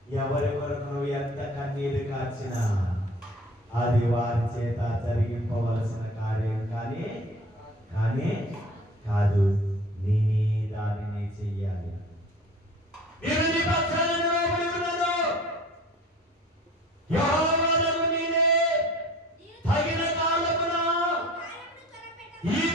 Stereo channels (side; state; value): both; normal; correlation 0.45